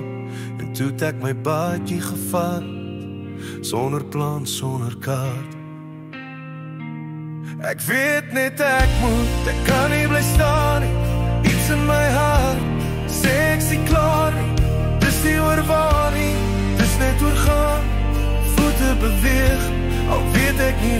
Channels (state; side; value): identical; both; correlation 1.00